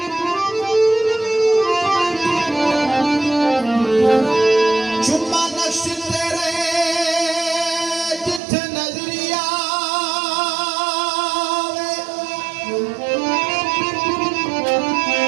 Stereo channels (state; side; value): drops out; left; at 8.4 s